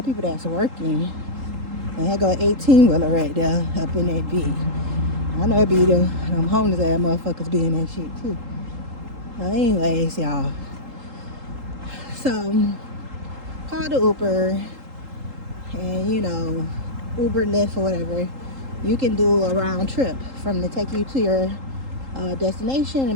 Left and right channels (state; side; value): late; left; 3.8 ms